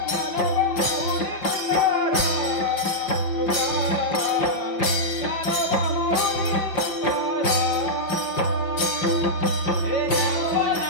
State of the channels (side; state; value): right; late; 5.6 ms